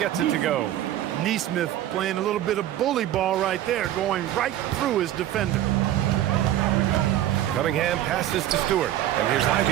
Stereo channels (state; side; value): quieter; left; 12.7 dB